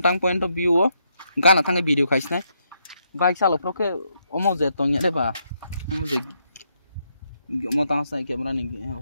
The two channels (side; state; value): both; inverted; correlation -0.77